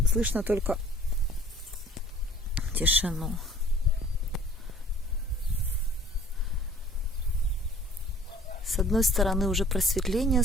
Слышно только тишину. С одной стороны уже просветление,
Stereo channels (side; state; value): both; normal; correlation 0.53